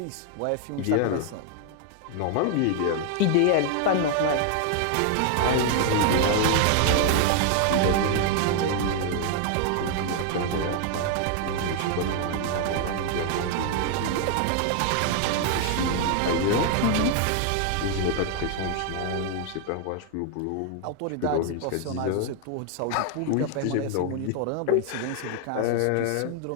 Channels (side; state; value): both; different; correlation 0.00